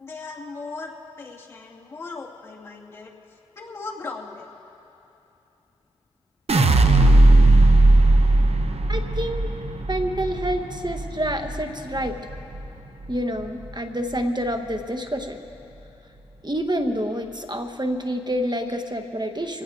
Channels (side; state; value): both; normal; correlation 0.88